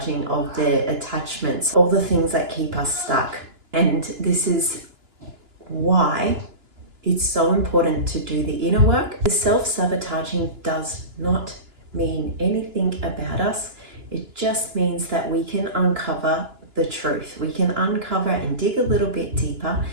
of the attachments, all the things that keep us stuck. And this is why it's so important to do the inner work. The self-sabotaging does not mean anything about us. It just means that we can uncover the truth. We can uncover and dig a little bit deeper,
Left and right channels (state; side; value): late; left; 2.9 ms